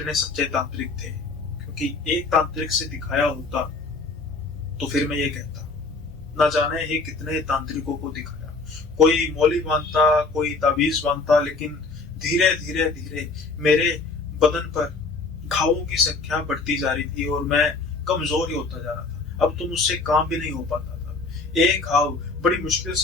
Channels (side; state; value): right; quieter; 3.9 dB